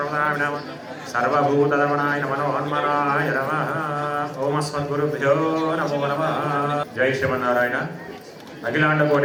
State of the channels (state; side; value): identical; both; correlation 1.00